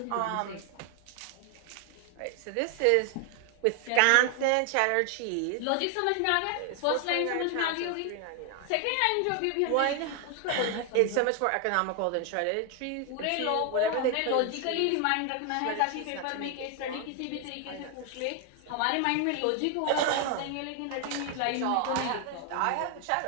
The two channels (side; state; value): both; different; correlation 0.01